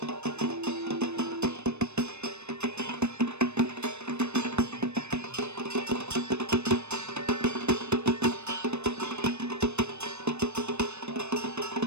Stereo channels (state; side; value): late; left; 0.81 ms